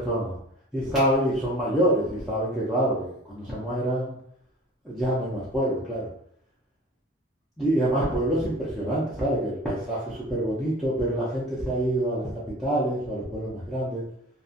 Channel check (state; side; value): normal; both; correlation 0.42